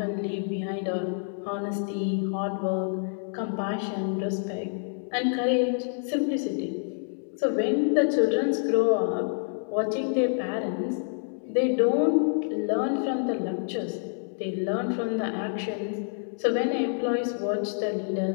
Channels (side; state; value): right; silent; digital silence